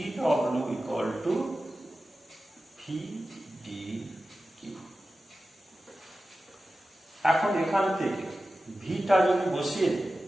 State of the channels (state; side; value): normal; both; correlation 0.94